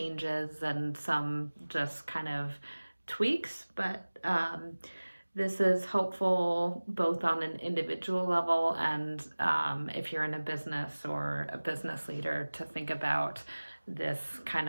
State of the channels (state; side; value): inverted; both; correlation -1.00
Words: and some just kind of tweaks. But this is helpful both on an individual level and if you're in a business or a business leader to think about this